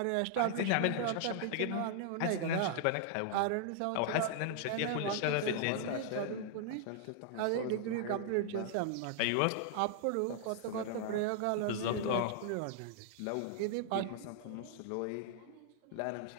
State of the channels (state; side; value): different; both; correlation 0.00